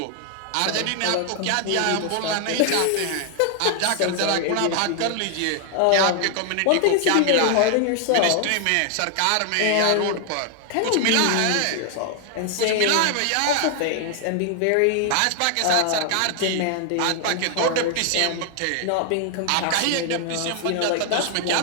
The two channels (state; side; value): different; both; correlation 0.00